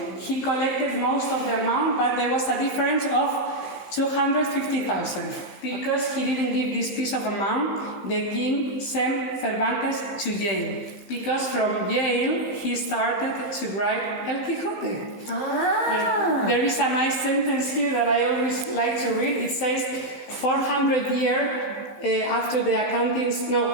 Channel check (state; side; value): late; right; 15 ms